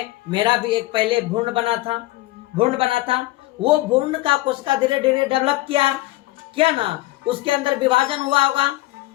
मेरा भी एक पहले भ्रूण बना था, वो भ्रूण का कोशिका धीरे धीरे डेवलप किया ना, उसके अंदर विभाजन हुआ होगा।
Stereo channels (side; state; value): right; quieter; 18.6 dB